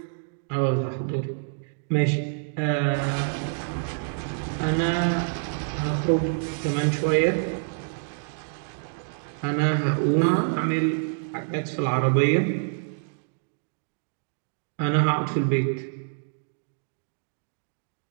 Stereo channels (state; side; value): silent; left; digital silence